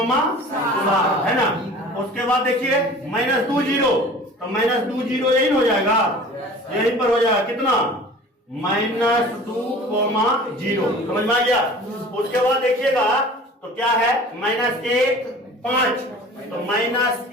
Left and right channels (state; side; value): normal; both; correlation 0.43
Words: 7 है ना। उसके बाद देखिए -2 0, तो -2 0 यही हो जाएगा, यहीं पर हो जाएगा कितना -2 कोमा 0। समझ में आ गया? उसके बाद देखिएगा तो क्या है -1 5, तो